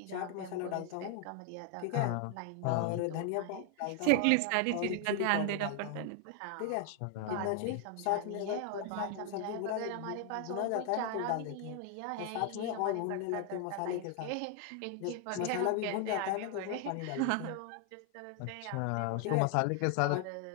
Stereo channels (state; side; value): different; both; correlation 0.00